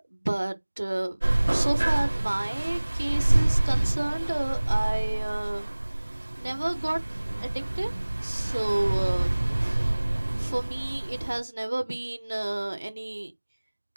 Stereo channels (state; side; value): inverted; both; correlation -1.00